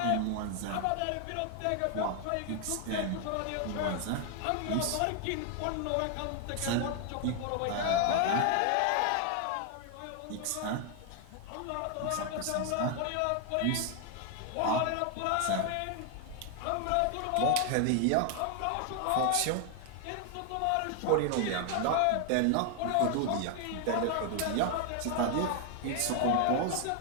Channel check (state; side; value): different; both; correlation 0.00